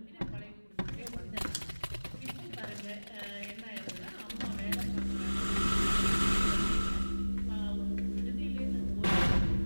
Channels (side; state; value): both; inverted; correlation -1.00